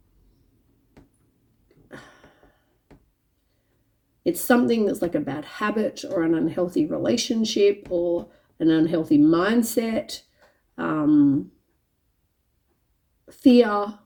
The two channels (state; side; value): identical; both; correlation 1.00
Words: like a bad habit or an unhealthy relationship or an unhealthy mindset, fear,